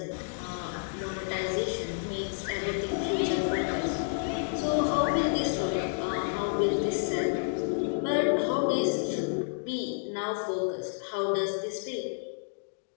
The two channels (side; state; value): right; silent; digital silence